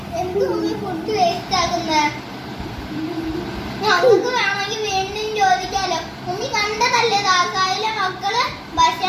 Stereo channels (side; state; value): both; identical; correlation 1.00